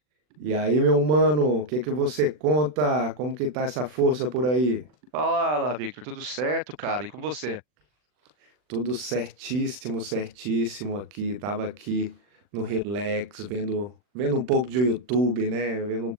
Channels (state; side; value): late; left; 40 ms